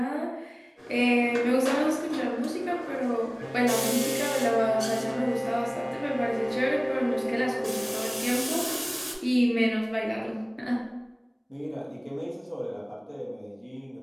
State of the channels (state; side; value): identical; both; correlation 1.00